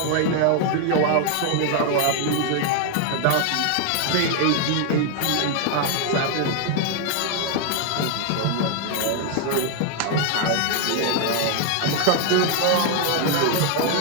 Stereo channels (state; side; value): different; both; correlation 0.00